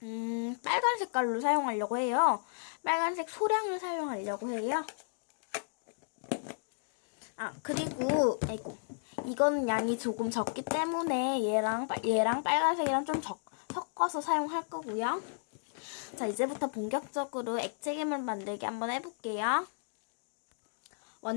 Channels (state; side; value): silent; right; digital silence